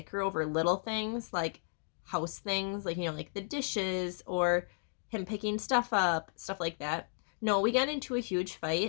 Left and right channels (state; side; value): silent; right; digital silence